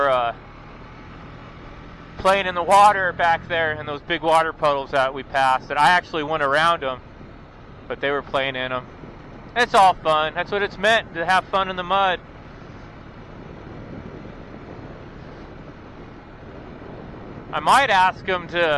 playing in the water back there in those big water puddles that we passed. And I actually went around them, but they were playing in them. It's all fun. That's what it's meant, to have fun in the mud. I might ask them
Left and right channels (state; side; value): identical; both; correlation 1.00